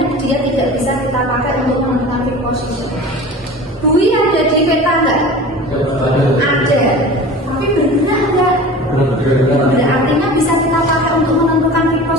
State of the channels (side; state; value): both; normal; correlation 0.37